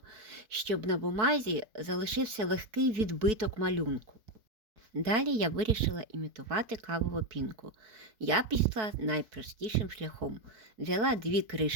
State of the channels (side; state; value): left; late; 4.6 ms